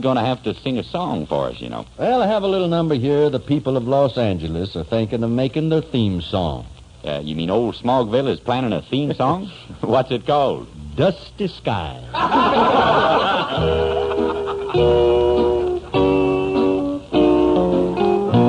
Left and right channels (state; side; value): identical; both; correlation 1.00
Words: going to have to sing a song for us, you know. Well, I have a little number here the people of Los Angeles are thinking of making their theme song. You mean old Smogville is planning a theme song? What's it called? Dusty Skies.